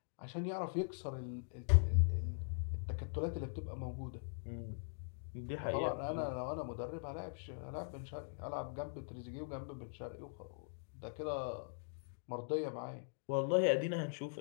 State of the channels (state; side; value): silent; right; digital silence